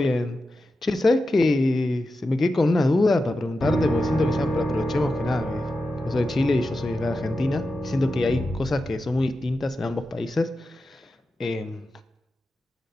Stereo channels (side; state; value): both; normal; correlation 0.91